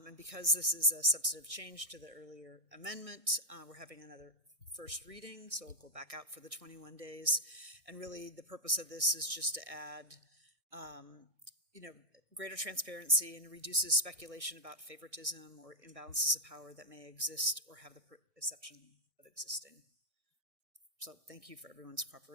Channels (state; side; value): late; left; 1.6 ms